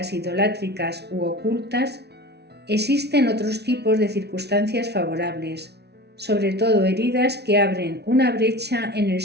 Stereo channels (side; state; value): left; late; 0.49 ms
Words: idolátricas u ocultas, existen otros tipos de circunstancias favorables, sobre todo heridas que abren una brecha en el